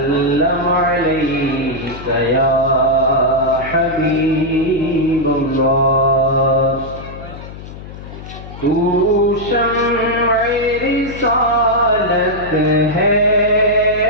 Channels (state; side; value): noise; left; hum, 14 dB below the sound